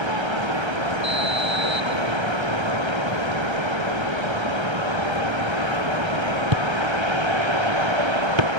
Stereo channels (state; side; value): late; left; 1.3 ms